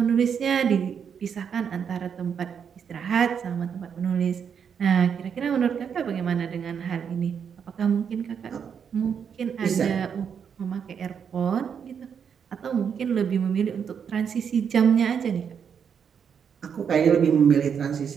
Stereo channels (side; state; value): left; quieter; 7.3 dB